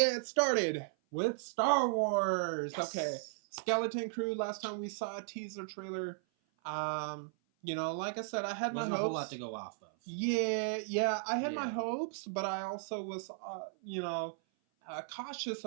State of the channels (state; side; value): silent; left; 54 dB below the other